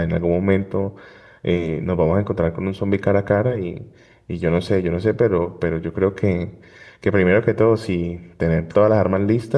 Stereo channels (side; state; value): both; identical; correlation 1.00